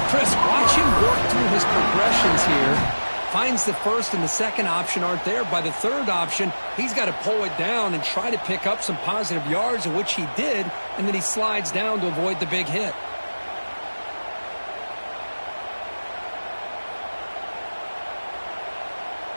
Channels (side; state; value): both; inverted; correlation -1.00